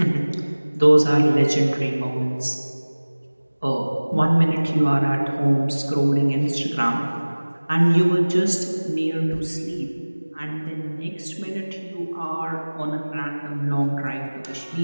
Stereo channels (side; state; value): both; inverted; correlation -1.00